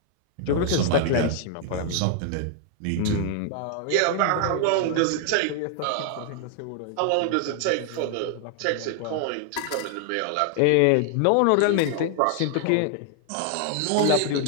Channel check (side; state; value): both; different; correlation 0.00